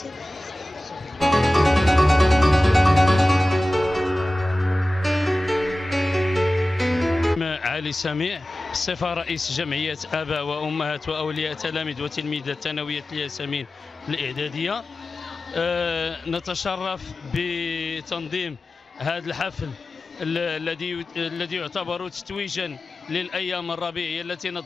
علي سميع، صفة رئيس جمعية آباء وأمهات وأولياء تلاميذ وتلميذات ثانوية الياسمين الإعدادية. نتشرف بتنظيم هذا الحفل الذي يعتبر تتويجا للأيام الربيعية التي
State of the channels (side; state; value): both; normal; correlation 0.96